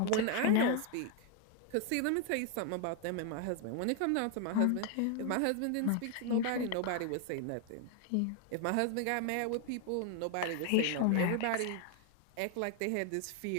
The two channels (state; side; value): different; both; correlation 0.00